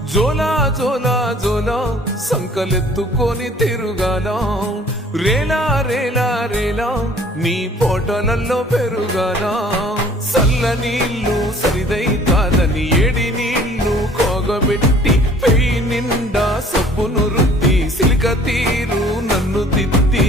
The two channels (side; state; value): both; normal; correlation 0.54